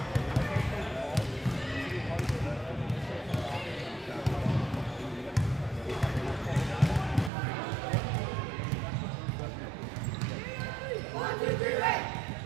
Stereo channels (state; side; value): drops out; left; at 7.3 s